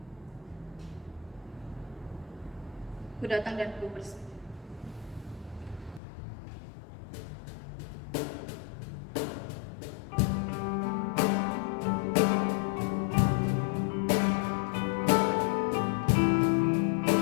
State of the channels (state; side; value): drops out; right; at 6.0 s